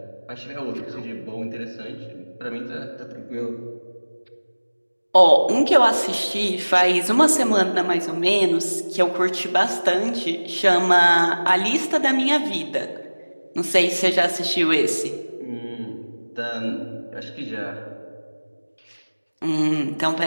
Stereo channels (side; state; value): both; inverted; correlation -1.00